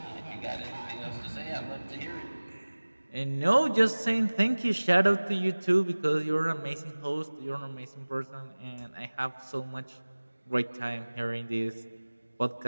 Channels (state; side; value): inverted; both; correlation -1.00